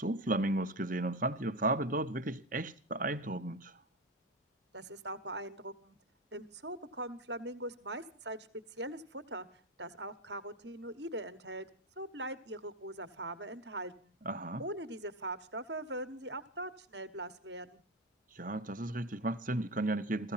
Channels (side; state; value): both; normal; correlation 0.18